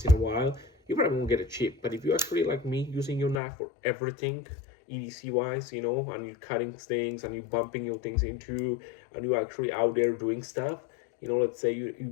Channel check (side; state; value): right; drops out; at 3.4 s